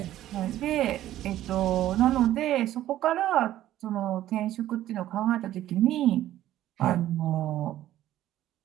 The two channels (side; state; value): left; quieter; 13.3 dB